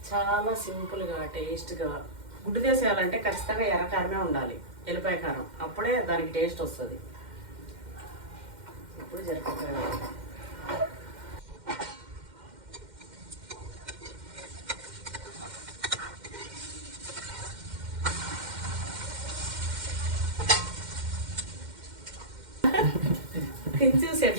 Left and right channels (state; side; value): late; left; 2.1 ms